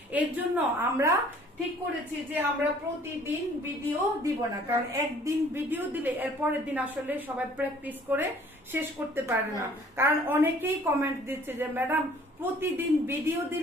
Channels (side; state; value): both; normal; correlation 0.55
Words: এর জন্য আমরা ঠিক করেছি যে আমরা প্রতিদিন ভিডিও দিব না, কারণ একদিন ভিডিও দিলে এর পরের দিন আসলে সবাই প্র্যাকটিস করে শেষ করতে পারে না। কারণ অনেকেই কমেন্ট দিচ্ছে যে ম্যাডাম প্রতিদিন ভিডিও